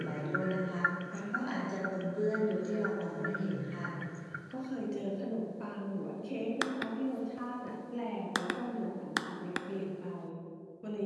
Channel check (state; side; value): identical; both; correlation 1.00